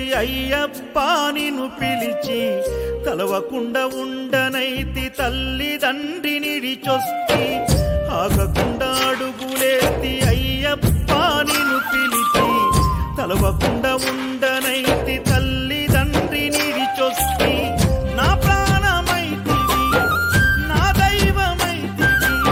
అయ్యప్ప నిన్ను పిలిచి కలవకుండా ఉండనైతి తల్లిదండ్రినిడిచొస్తి ఆగకుండా అడుగులేస్తి అయ్యప్ప నిన్ను పిలిచి కలవకుండా ఉండనైతి తల్లిదండ్రినిడిచొస్తి నా ప్రాణమైతివి నా దైవమైతివి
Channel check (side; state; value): both; identical; correlation 1.00